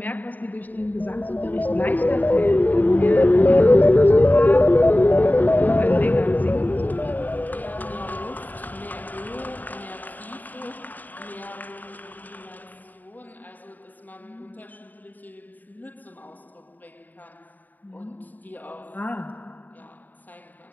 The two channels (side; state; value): right; late; 0.085 ms